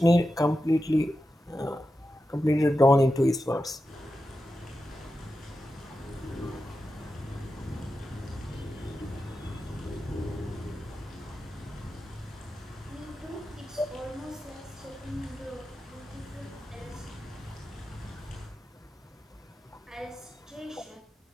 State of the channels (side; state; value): both; normal; correlation 0.91